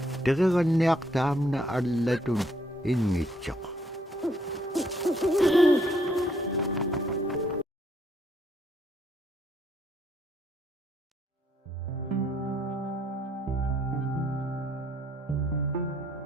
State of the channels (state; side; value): normal; both; correlation 0.70